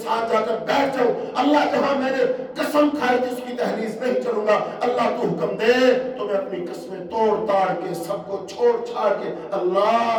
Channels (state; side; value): identical; both; correlation 1.00